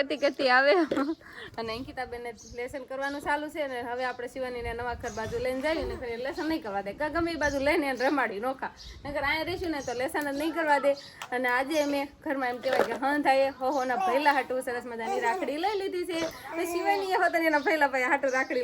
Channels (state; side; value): identical; both; correlation 1.00